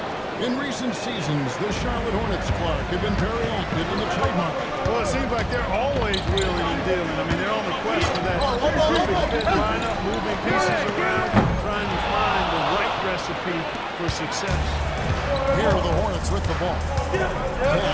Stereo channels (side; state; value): both; identical; correlation 1.00